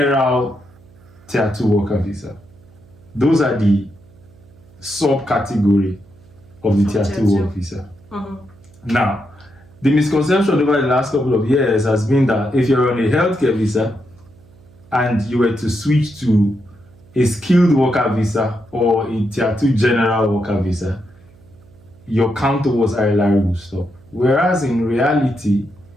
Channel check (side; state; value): right; noise; hum, 26 dB below the sound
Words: tier 2 worker visa. Those are the subcategory of the tier 2 work visa. Now, the misconception over the last couple of years has been that if you're on a healthcare visa and you were to switch to a skilled worker visa or a tier 2 general worker visa, your count towards ILR will stop. Whereas in reality,